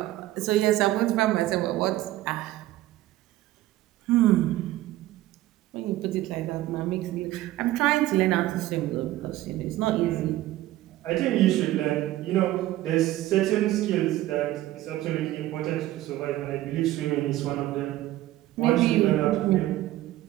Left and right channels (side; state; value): left; quieter; 15.4 dB